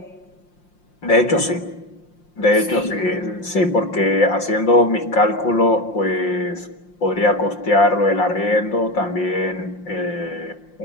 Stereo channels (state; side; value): late; right; 5.7 ms